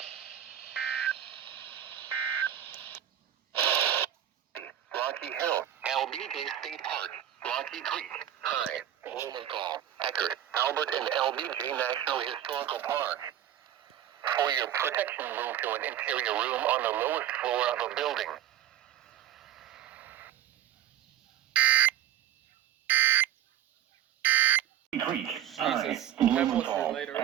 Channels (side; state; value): left; quieter; 11.2 dB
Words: Rocky Hill, LBJ State Park, Rocky Creek, High, Williamson, Eckerd, Albert, and LBJ National Historical Park. For your protection, move to an interior room on the lowest floor of a building. Creek, Jesus, High, Pebbles Blumenthal, later.